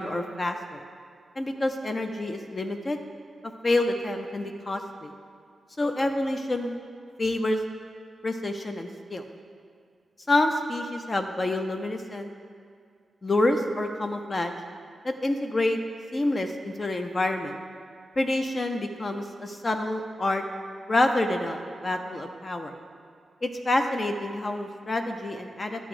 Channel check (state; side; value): normal; both; correlation 0.92